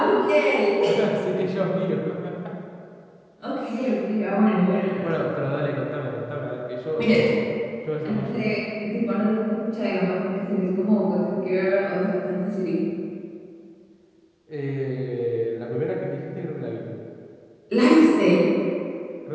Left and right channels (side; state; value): both; identical; correlation 1.00